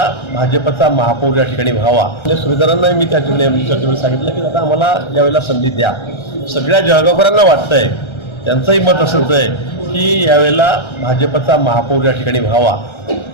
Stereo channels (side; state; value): right; late; 1.3 ms